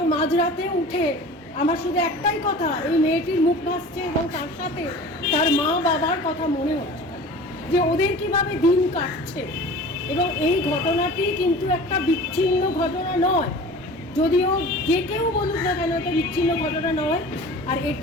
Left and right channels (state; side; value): normal; both; correlation 0.40